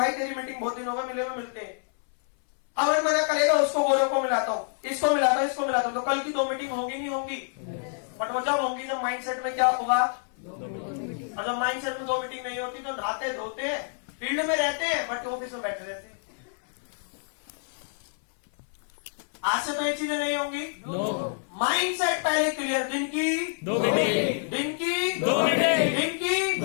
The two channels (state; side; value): silent; right; 60 dB below the other